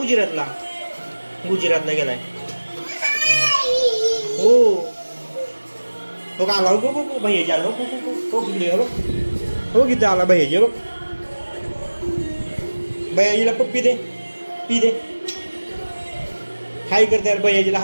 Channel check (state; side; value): inverted; both; correlation -1.00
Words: गुजरातला गेलाय हो हो का आला हो हो भैयाजी आला हो हो तिकडे हो किती आला भैयाजी बघ भैयाजीला पप्पी दे पी दे हाय कर त्याला भैयाजीला